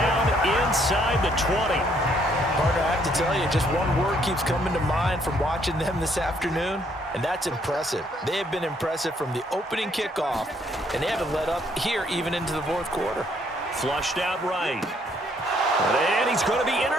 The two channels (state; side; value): normal; both; correlation 0.68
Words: inside the 20. Partner, I have to tell you, just one word keeps coming to mind from watching them this afternoon, and that's impressive. They have been impressive from the opening kickoff, and they haven't let up here even into the fourth quarter. Flushed out right. And he's going to be